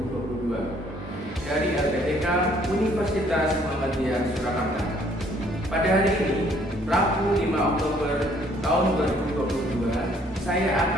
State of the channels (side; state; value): both; normal; correlation 0.62